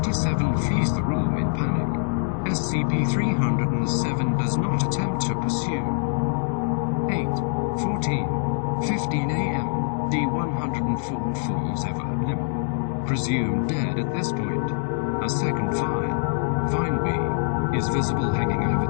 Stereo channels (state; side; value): silent; right; digital silence